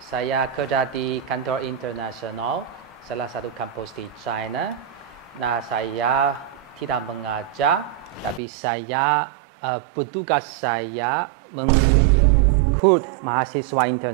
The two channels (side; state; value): left; drops out; at 8.4 s